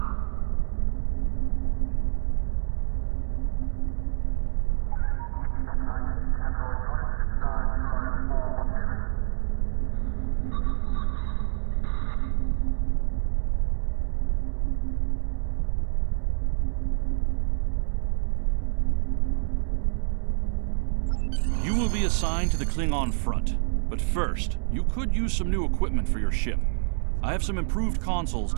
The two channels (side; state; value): left; silent; 60 dB below the other